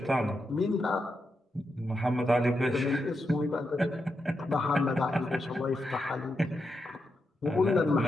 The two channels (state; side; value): normal; both; correlation 0.85